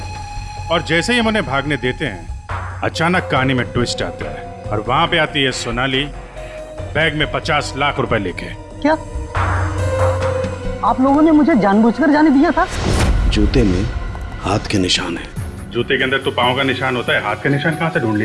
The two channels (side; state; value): both; identical; correlation 1.00